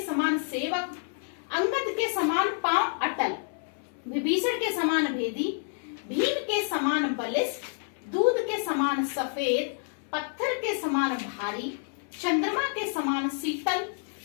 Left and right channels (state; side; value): silent; right; 59 dB below the other